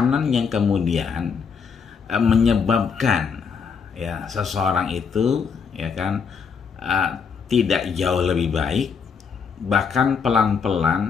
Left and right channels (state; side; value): quieter; right; 6.0 dB